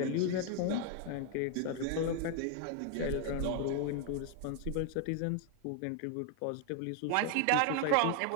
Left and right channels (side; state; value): both; different; correlation 0.01